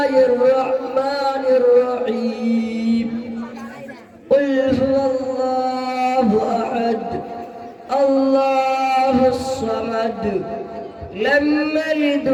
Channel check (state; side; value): identical; both; correlation 1.00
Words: الرحمن الرحيم. قل هو الله أحد الله الصمد لم يلد